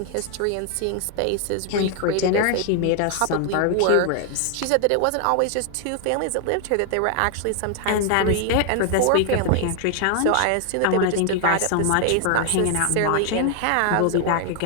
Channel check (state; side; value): different; both; correlation 0.00